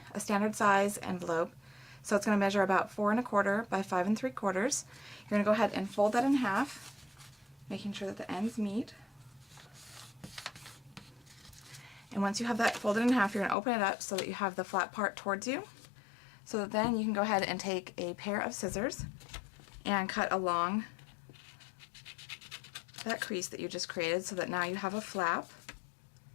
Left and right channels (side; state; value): right; drops out; at 13.6 s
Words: a standard size envelope. So it's going to measure about 4 1/4 by 5 3/4. You're going to go ahead and fold that in half, making sure that the ends meet. And once you have that folded in half, you're going to open it up so that you have the flat part towards you. So that then you can go ahead and take a pair of scissors and cut along that crease that you just created so that now you have a flap.